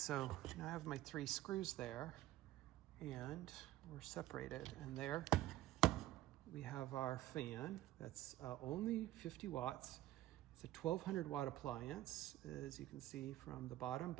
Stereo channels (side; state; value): left; quieter; 15.1 dB